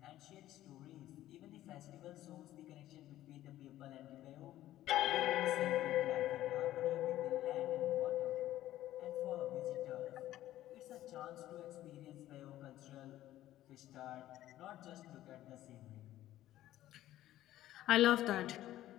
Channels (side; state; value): right; quieter; 14.0 dB